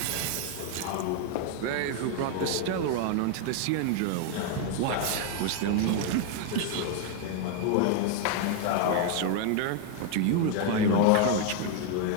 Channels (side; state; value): both; different; correlation 0.01